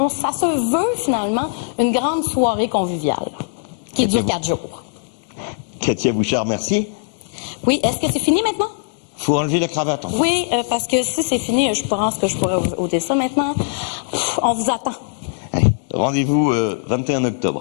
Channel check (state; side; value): silent; right; digital silence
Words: ça se veut, finalement, une grande soirée conviviale qui dure 4 jours. Katia Bouchard, merci. Oui, est-ce que c'est fini maintenant? Faut enlever la cravate. Enfin. Oui, parce que si c'est fini, je pense que je pourrais ôter ça maintenant. On vous attend. Rendez-vous 21